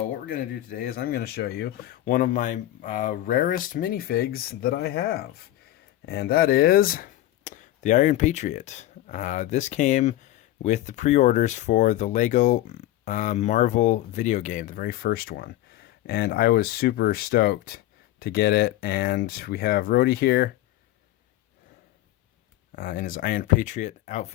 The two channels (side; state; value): right; quieter; 14.7 dB